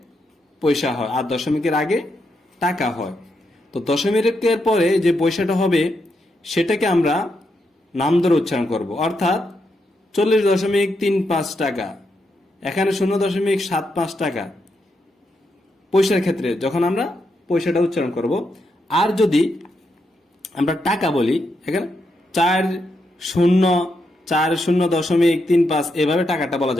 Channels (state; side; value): normal; both; correlation 0.82